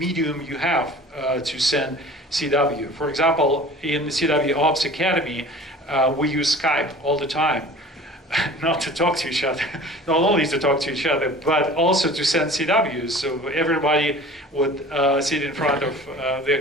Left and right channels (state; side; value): normal; both; correlation 0.43